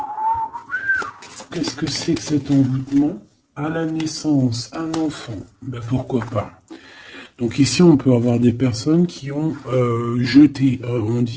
Qu'est-ce que c'est que cet envoûtement? À la naissance, un enfant. Ben pourquoi pas. Donc ici, on peut avoir des personnes qui ont jeté, on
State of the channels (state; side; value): identical; both; correlation 1.00